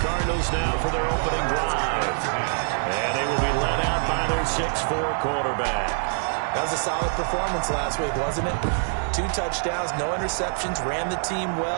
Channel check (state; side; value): silent; left; digital silence